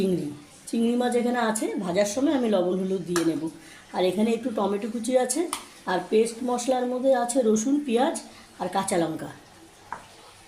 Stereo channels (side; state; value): both; identical; correlation 1.00